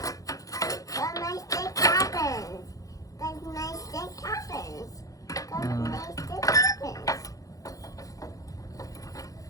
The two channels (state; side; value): late; right; 0.17 ms